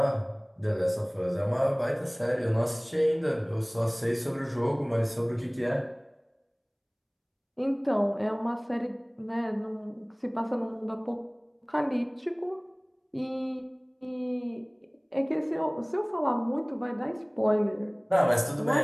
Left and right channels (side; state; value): both; identical; correlation 1.00